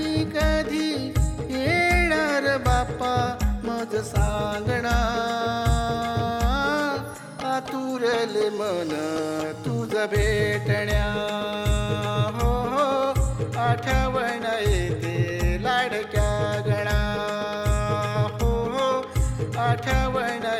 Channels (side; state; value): both; identical; correlation 1.00